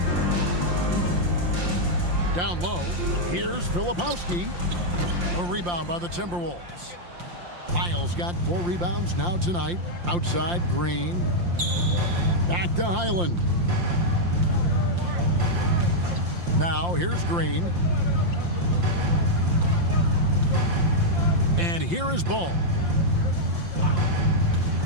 Down low, here's Filipowski. A rebound by the Timberwolves. Lyles got 4 rebounds now tonight. Outside, Green. Back to Highland. Now, here's Green. And here is Ball.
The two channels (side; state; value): left; late; 5.7 ms